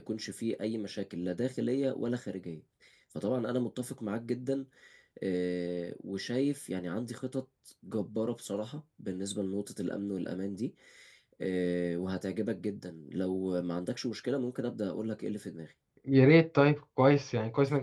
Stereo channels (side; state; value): both; identical; correlation 1.00